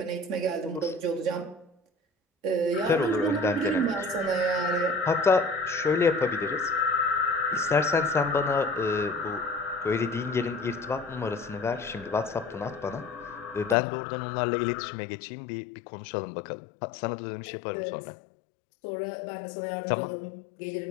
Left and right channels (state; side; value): drops out; right; at 13.8 s